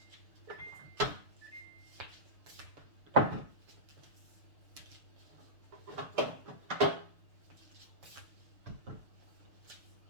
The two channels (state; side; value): late; left; 6.8 ms